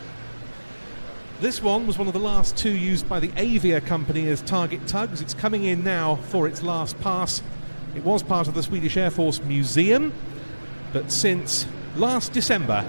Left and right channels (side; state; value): both; inverted; correlation -1.00